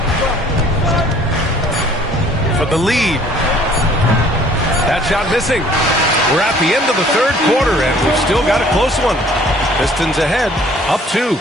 For the lead. That shot missing. We're at the end of the third quarter, and we've still got a close one. Pistons ahead, up 2.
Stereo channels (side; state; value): both; normal; correlation 0.55